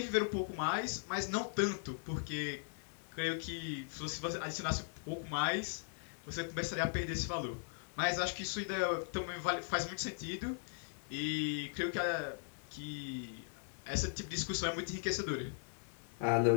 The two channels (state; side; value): silent; right; 52 dB below the other